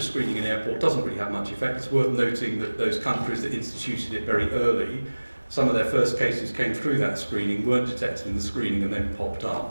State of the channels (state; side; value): inverted; both; correlation -1.00